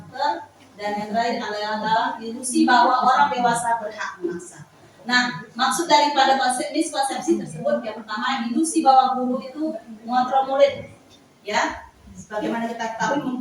Dan yang terakhir adalah ilusi bahwa orang dewasa berhak memaksa. Nah, maksud daripada miskonsepsi tersebut yang pertama, ilusi bahwa guru itu mengontrol murid. Ya, sebagaimana kita ketahui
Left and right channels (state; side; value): identical; both; correlation 1.00